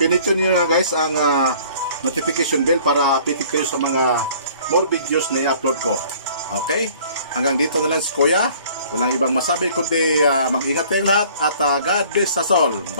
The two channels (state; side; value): inverted; both; correlation -0.53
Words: niyo na guys ang notification bell para updated kayo sa mga more videos na i-upload ko. Okay? Hanggang dito na lang si Kuya. Walang ibang masabi kundi mag-ingat kayong lahat at God bless us all.